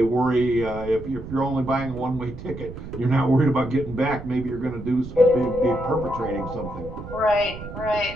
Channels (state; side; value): noise; right; rumble, 12 dB below the sound